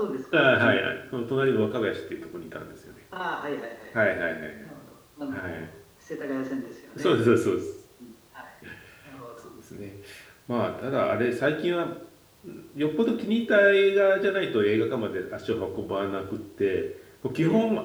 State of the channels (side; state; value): both; identical; correlation 1.00